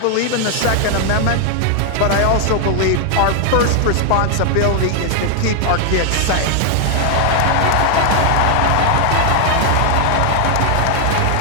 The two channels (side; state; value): both; different; correlation 0.00